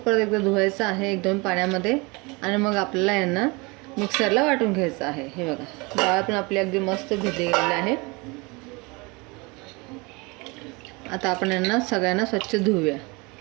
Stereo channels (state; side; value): quieter; left; 26.8 dB